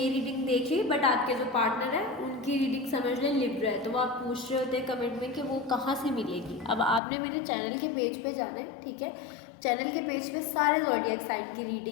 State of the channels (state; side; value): drops out; right; at 7.0 s